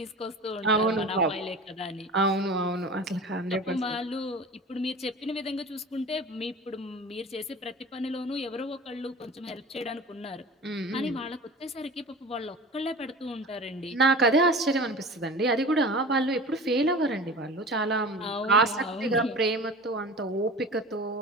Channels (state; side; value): normal; both; correlation 0.36